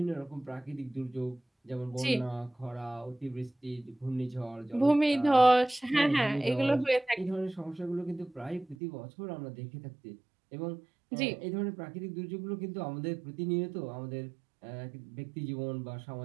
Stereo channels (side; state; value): left; drops out; at 8.8 s